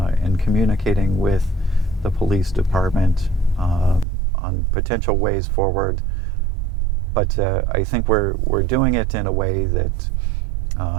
in communicating with the police department on potential ways forward. But I think we're doing it in a way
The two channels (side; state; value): left; drops out; at 4.0 s